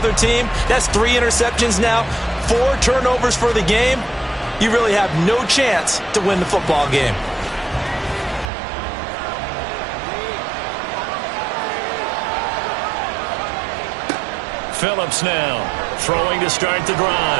team, that's 3 interceptions now, 4 turnovers for the game. You really have no chance to win the football game. Phillips now throwing to start the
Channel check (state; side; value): drops out; left; at 8.5 s